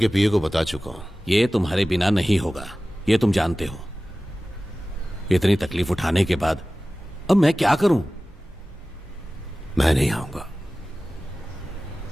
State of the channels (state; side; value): normal; both; correlation 0.97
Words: पीए को बता चुका हूं। ये तुम्हारे बिना नहीं होगा, ये तुम जानते हो। इतनी तकलीफ उठाने के बाद अब मैं क्या करूं? मैं नहीं आऊंगा।